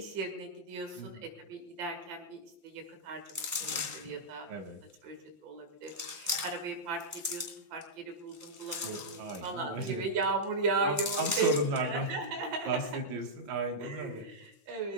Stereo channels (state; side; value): late; left; 5.8 ms